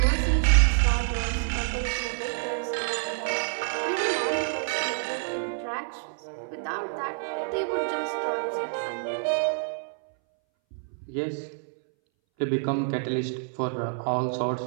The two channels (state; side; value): silent; left; 60 dB below the other